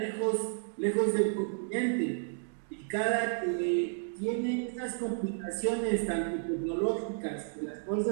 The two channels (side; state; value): left; silent; digital silence